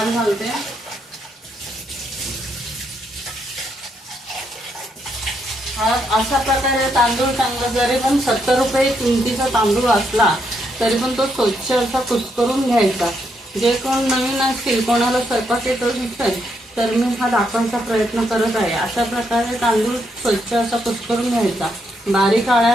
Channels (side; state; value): both; normal; correlation 0.78